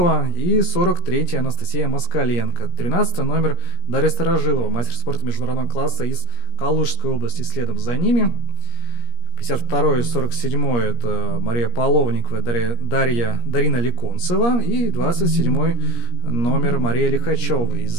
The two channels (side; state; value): right; late; 17 ms